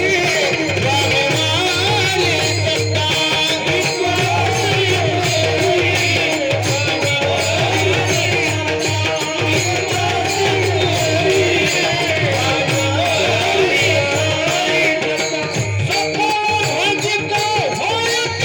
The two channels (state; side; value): identical; both; correlation 1.00